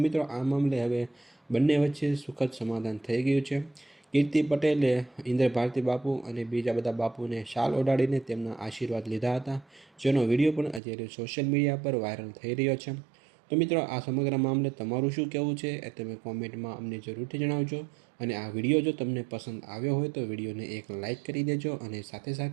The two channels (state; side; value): drops out; left; at 10.8 s